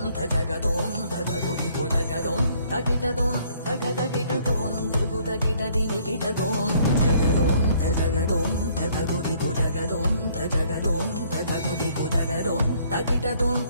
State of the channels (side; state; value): both; inverted; correlation -0.62